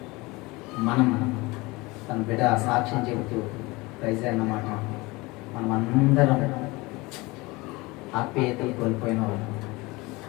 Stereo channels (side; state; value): right; quieter; 23.2 dB